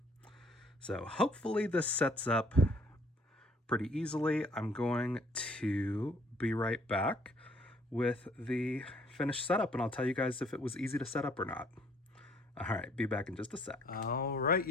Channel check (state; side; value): normal; both; correlation 0.62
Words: So hopefully this sets up pretty easily. I'm going to be right back with the finished setup, and I'll tell you guys if it was easy to set up or not. All right, be back in just a sec. All right,